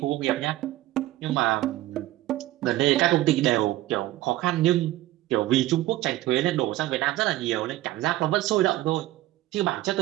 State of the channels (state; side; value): quieter; left; 16.1 dB